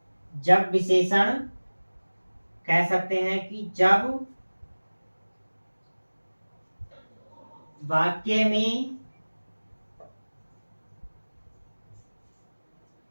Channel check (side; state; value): both; inverted; correlation -1.00